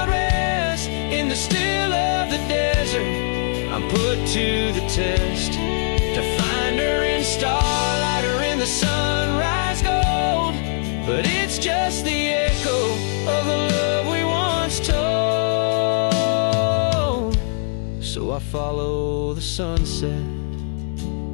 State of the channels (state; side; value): silent; right; 64 dB below the other